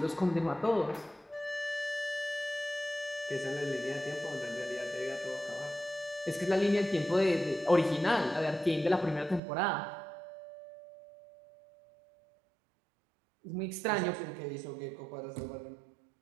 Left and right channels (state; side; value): drops out; left; at 9.4 s